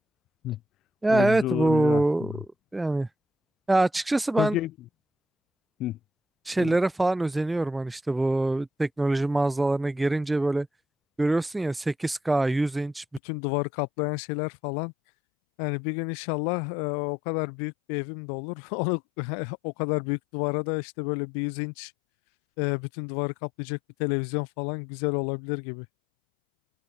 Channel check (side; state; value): right; drops out; at 13.2 s